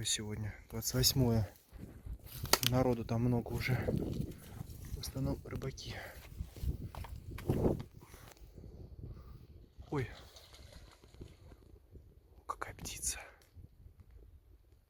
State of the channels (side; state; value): both; identical; correlation 1.00